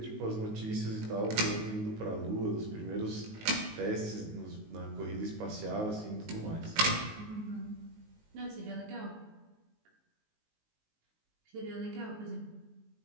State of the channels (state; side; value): late; left; 19 ms